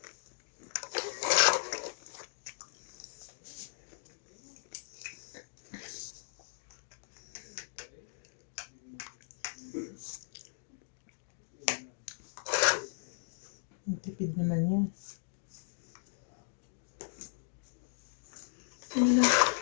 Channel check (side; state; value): right; silent; digital silence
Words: Tipid naman yan. Ano lang.